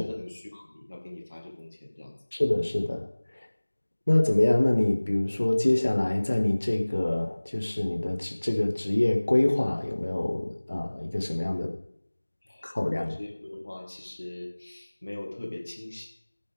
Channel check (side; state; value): both; inverted; correlation -1.00